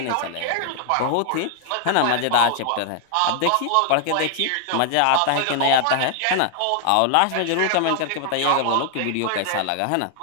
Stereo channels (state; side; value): different; both; correlation 0.00